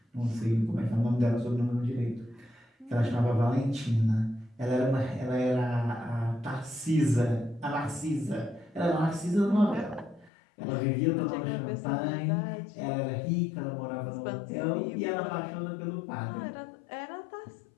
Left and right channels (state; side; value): drops out; right; at 10.3 s